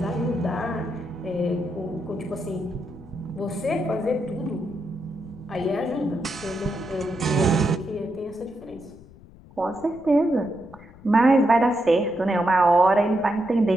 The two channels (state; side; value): noise; left; rumble, 22 dB below the sound